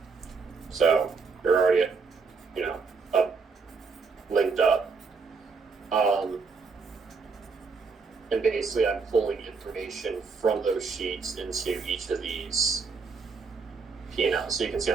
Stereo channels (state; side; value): quieter; left; 4.9 dB